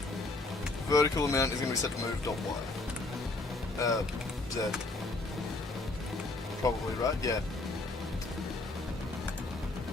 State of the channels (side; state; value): right; quieter; 3.1 dB